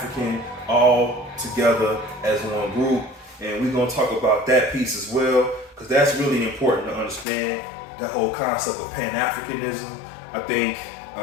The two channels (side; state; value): right; drops out; at 7.2 s